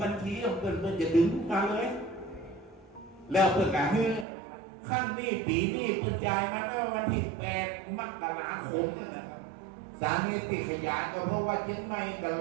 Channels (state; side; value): drops out; left; at 4.2 s